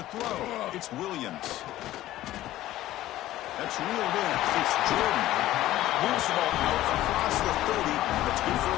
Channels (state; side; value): quieter; right; 14.9 dB